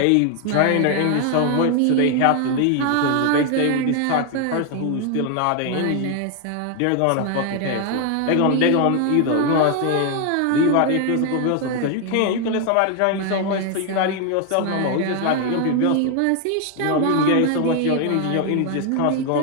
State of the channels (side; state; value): both; different; correlation 0.00